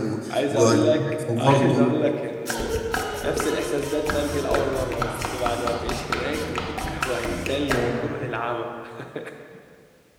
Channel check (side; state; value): both; identical; correlation 1.00